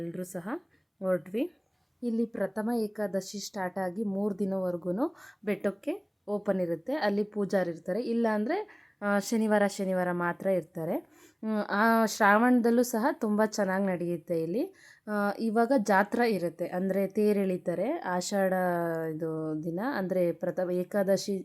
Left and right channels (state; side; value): identical; both; correlation 1.00